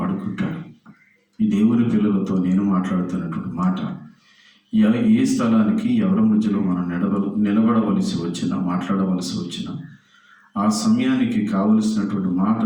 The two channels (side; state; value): both; identical; correlation 1.00